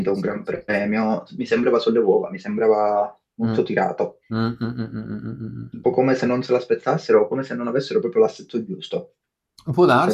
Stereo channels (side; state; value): both; identical; correlation 1.00